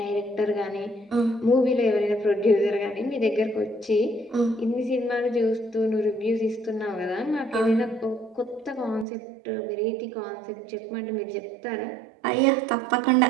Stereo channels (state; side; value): drops out; left; at 9.1 s